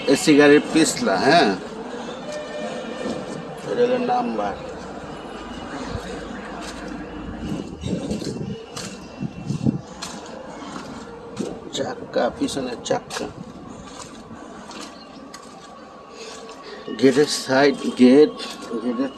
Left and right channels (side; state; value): both; identical; correlation 1.00